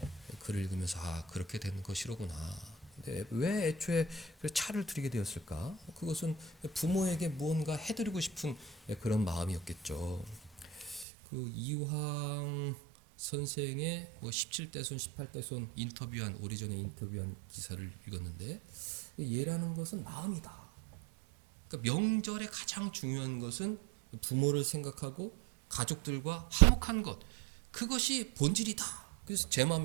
글을 읽으면서 그렇게 되는 것이로구나. 근데 왜 애초에 차를 드리게 되었을까? 그것은 부모에게 무언가 해드리고 싶은 그런 마음이었겠죠. 그 이황 선생의 17대손, 18대손 오래전에 인터뷰한 기사를 읽었는데, 얘라는 것은 마음이다. 그러니까 명절에 가장 중요한 것은 부모를 생각하고 가족들과 화목한 것, 그것이 본질이다. 그래서 제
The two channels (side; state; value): left; drops out; at 11.1 s